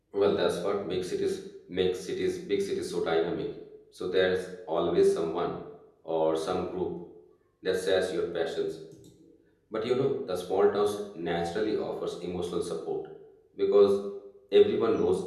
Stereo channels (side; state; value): both; identical; correlation 1.00